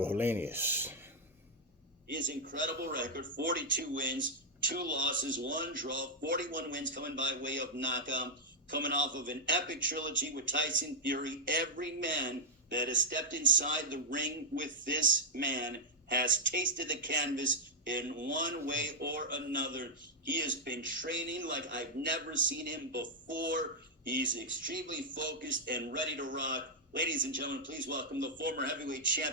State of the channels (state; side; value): normal; both; correlation -0.05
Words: Helenius. His incredible record 42 wins, 2 losses, 1 draw, 41 wins coming by way of knockout, coming off of an epic trilogy with Tyson Fury. Every man that has stepped inside the ring with this man has tasted the canvas in one way or another. He has been training like I've never seen him before. He's extremely focused and ready to rock. Ladies and gentlemen, please welcome the former heavyweight